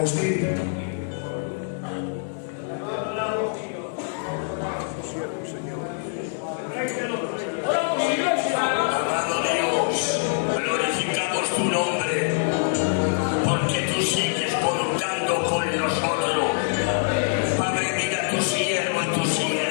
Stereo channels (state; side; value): silent; right; digital silence